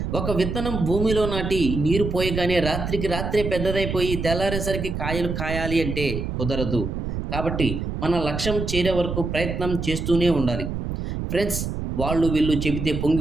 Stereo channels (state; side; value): noise; right; rumble, 4 dB below the sound